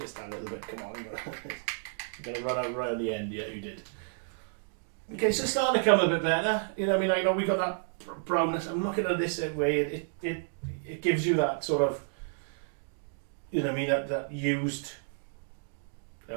a little bit, come on. You're going to run out right at the end, yeah, you did. Okay, so it's starting to come a bit better. You know, I mean, I know we got that brownness. I'm looking at this way, it gives you that sort of, you know, I mean, that used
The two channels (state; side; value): silent; left; digital silence